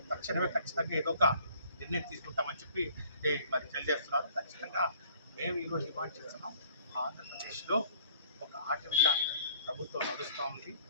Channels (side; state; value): both; inverted; correlation -0.58